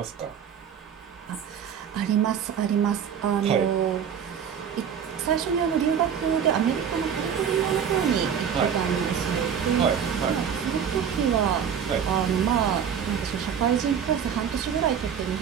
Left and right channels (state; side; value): quieter; left; 7.8 dB